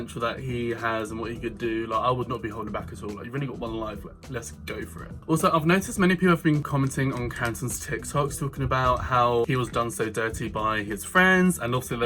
that he has and what he could do, like, I would not be holding back at all. Like, you've only got one life, let's go for it. Also, I've noticed many people have been commenting on Carrington's TikToks talking about how he was done so dirty by his friends, and also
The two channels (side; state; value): both; identical; correlation 1.00